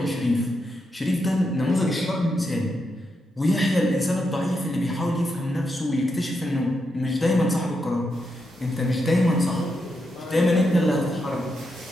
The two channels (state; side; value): normal; both; correlation 0.84